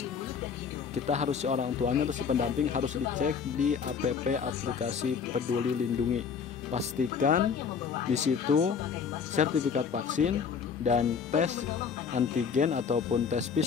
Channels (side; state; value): right; quieter; 6.4 dB